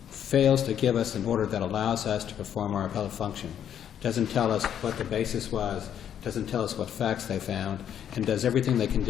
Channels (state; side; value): quieter; right; 9.5 dB